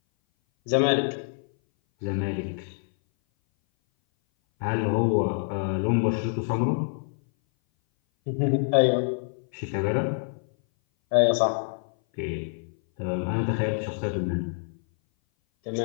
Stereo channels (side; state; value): right; silent; 58 dB below the other